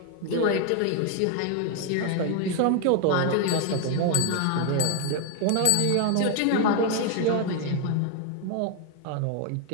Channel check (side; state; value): both; different; correlation 0.01